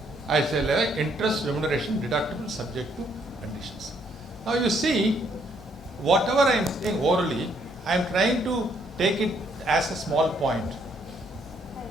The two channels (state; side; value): normal; both; correlation 0.69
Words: I say like interest remuneration deductible subject to conditions. Now you see, whatever I am saying orally, I am trying to take it as a small point.